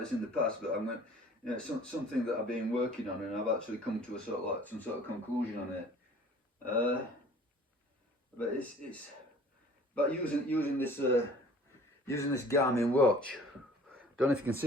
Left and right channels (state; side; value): normal; both; correlation 0.49